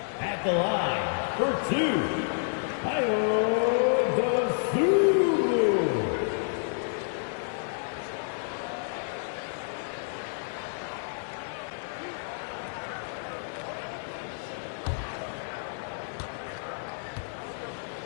At the line for two,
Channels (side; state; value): right; silent; digital silence